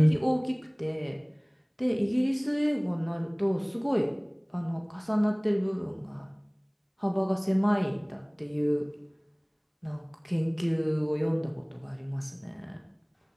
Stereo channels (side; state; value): both; identical; correlation 1.00